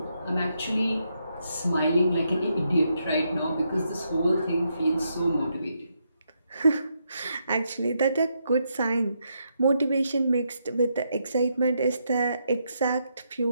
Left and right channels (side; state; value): both; inverted; correlation -0.79